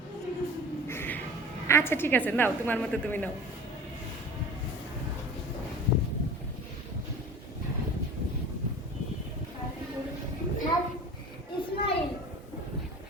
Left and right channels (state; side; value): normal; both; correlation 0.38